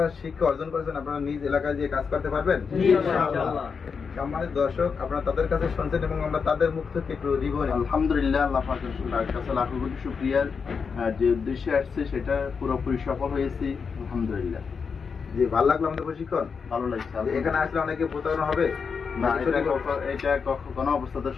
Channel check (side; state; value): right; quieter; 5.7 dB